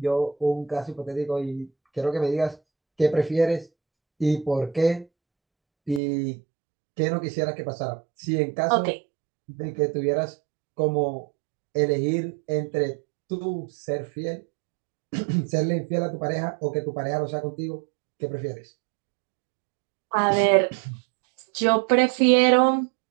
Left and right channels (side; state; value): left; drops out; at 6.0 s